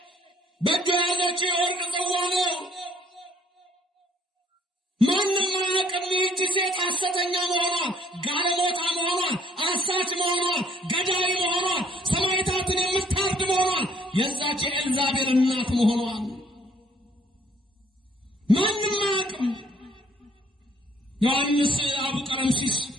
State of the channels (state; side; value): normal; both; correlation 0.62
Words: በእጇ ያዘችው የወርቅ ጽዋ ነው። ማንም አያውቅም ይህቺ ሴት ሐሰተኛ መሆኗን፣ ጋለሞታ መሆኗን፣ አሳች መሆኗን፣ ገዳይ መሆኗን፣ ሰማዕታትን የምታርድ መሆኗን፣ የዛች የኤልዛቤል እናት መሆኗን ማንም አያውቅም። ዮሐንስ አቡ ቀለምሲስ፣